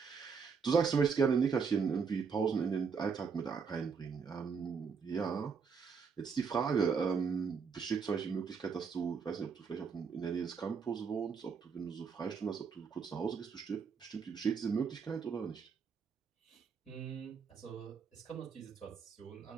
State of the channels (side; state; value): left; quieter; 5.8 dB